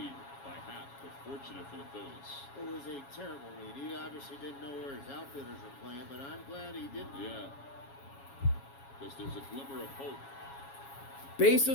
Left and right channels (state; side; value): late; right; 7.2 ms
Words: by Happ, but fortunate for the Phillies. It was a terrible read. He obviously didn't know where his outfielders were playing, but I'm glad he didn't. Yeah. because there's a glimmer of hope.